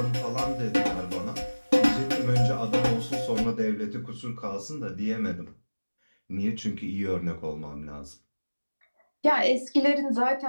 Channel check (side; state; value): both; inverted; correlation -1.00